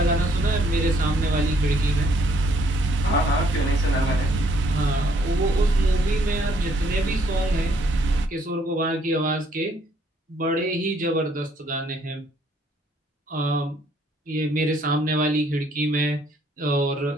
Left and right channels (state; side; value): normal; both; correlation 0.66